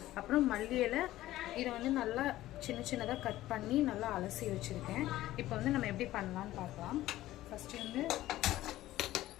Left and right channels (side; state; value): right; quieter; 15.3 dB